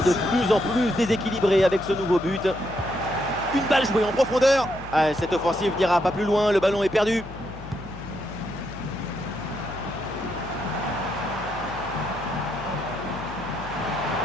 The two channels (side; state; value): left; noise; hum, 15 dB below the sound